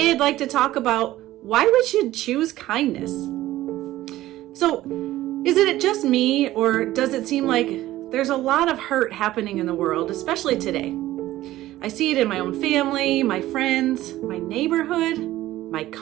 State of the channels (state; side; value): quieter; left; 15.4 dB